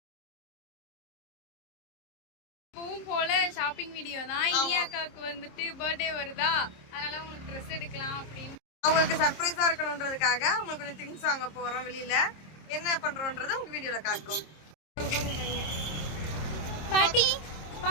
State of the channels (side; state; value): right; late; 26 ms